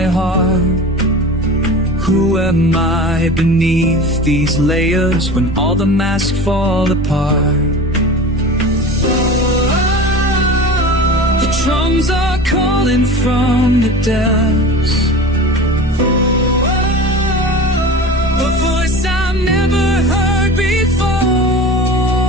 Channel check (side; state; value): both; normal; correlation 0.34